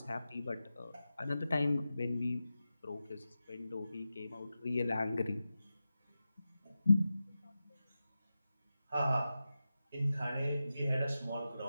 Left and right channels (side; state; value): both; inverted; correlation -0.93